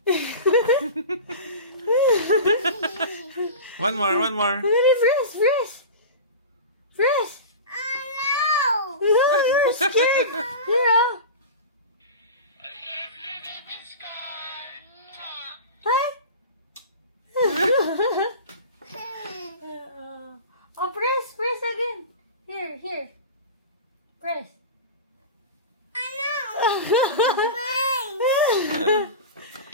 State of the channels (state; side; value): inverted; both; correlation -0.30